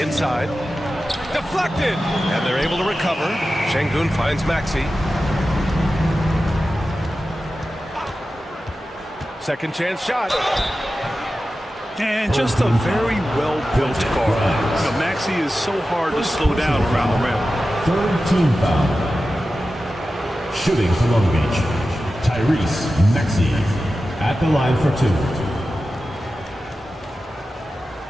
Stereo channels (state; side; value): normal; both; correlation 0.93